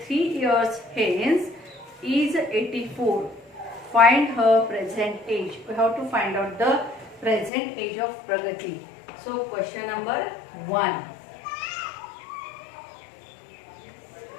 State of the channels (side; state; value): right; drops out; at 7.5 s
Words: 3 years hence is 84. Find her present age. We have to find out the present age of Pragati. So question number 1.